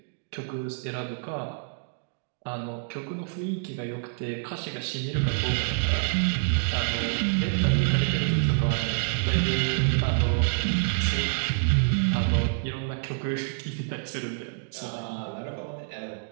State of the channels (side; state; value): left; silent; digital silence